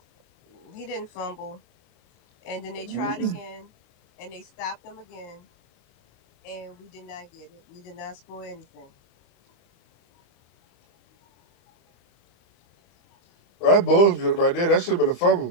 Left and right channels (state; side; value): late; right; 34 ms